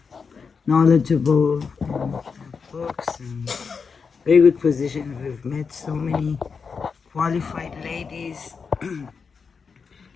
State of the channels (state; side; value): quieter; right; 5.5 dB